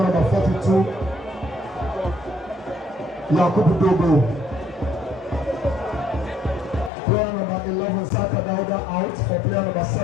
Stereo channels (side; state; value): right; drops out; at 6.9 s